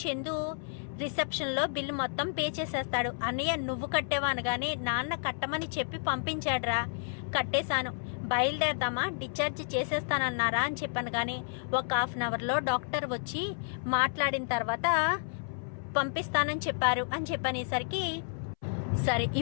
చందు రిసెప్షన్లో బిల్లు మొత్తం పే చేసేస్తాడు. అన్నయ్య నువ్వు కట్టేవా అనగానే నాన్న కట్టమని చెప్పి పంపించాడురా, కట్టేశాను, బయలుదేరదామా, డిశ్చార్జ్ చేసేస్తానన్నారా అని చెప్పాను. కానీ ఒక హాఫ్ అన్ అవర్లో డాక్టర్ వచ్చి మాట్లాడిన తర్వాత పంపిస్తానని చెప్పారు అని చెప్పనేసరికి సరే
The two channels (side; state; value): right; silent; 57 dB below the other